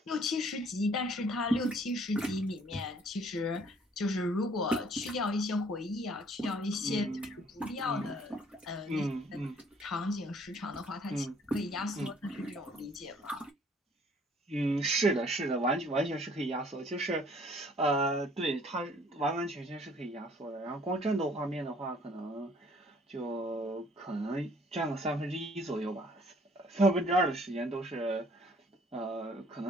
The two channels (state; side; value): normal; both; correlation 0.59